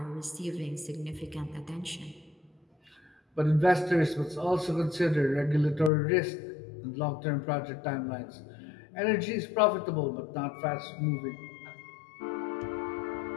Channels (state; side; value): drops out; right; at 5.9 s